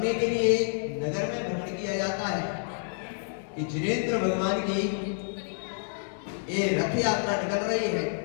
के लिए नगर में भ्रमण किया जाता है कि जिनेंद्र भगवान की ये रथ यात्रा निकल रही है।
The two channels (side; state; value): right; silent; 59 dB below the other